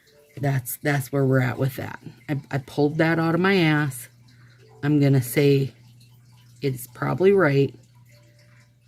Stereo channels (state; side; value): identical; both; correlation 1.00